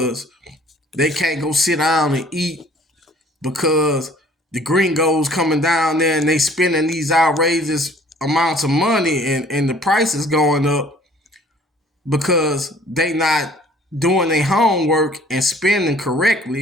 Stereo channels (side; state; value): both; normal; correlation 0.55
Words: they can't go sit down and eat because the gringos coming down there and they spending these outrageous amounts of money and the prices going up because they not doing their homework and spending